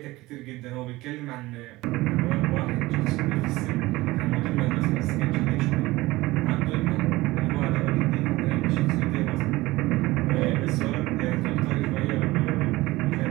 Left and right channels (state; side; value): quieter; left; 19.5 dB